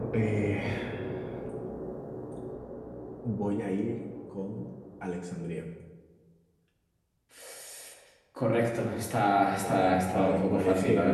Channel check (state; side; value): identical; both; correlation 1.00